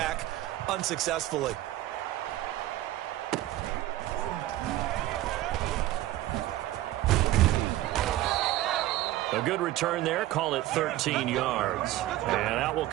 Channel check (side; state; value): left; quieter; 15.1 dB